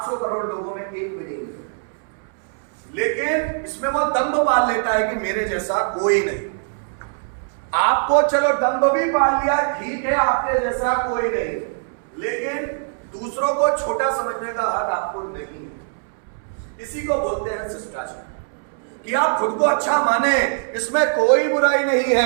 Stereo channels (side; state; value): left; silent; 64 dB below the other